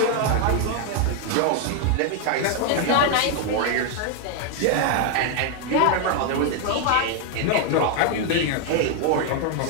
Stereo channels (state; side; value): different; both; correlation 0.01